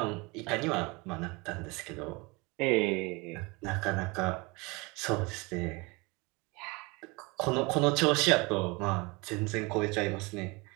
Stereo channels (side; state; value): left; quieter; 26.2 dB